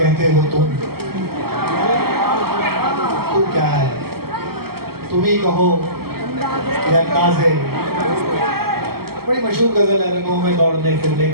हो तुम क्या है, तुम ही कहो ये अंदाज है। बड़ी मशहूर गजल है, रंगों में दौड़ने फिरने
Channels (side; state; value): left; late; 0.95 ms